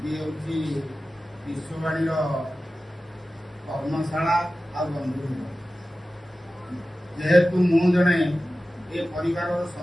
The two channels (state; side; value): normal; both; correlation 0.95